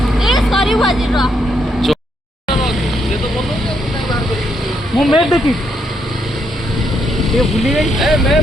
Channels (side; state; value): both; normal; correlation 0.76